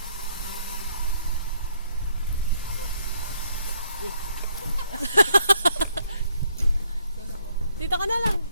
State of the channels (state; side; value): inverted; both; correlation -0.69